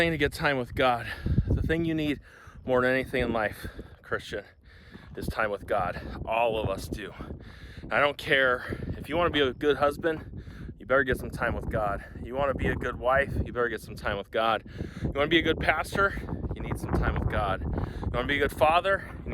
to get time with God. The thing you need more than anything in life, Christian, is time with God. All of us do. I don't care if you want to be a good husband, you better get some time with God. You want to be a good wife, you better get some time with God. You want to be a good pastor, you need some time with God. You want to be a good father, you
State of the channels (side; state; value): both; identical; correlation 1.00